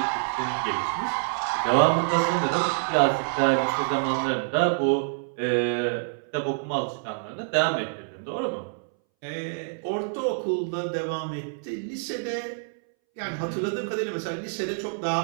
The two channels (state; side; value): silent; left; 60 dB below the other